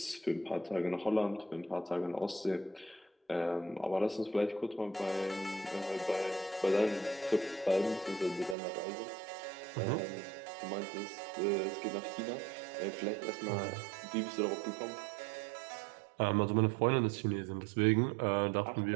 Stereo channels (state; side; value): drops out; left; at 8.6 s